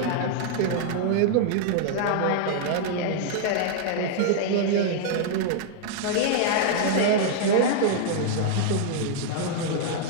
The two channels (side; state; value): both; different; correlation -0.01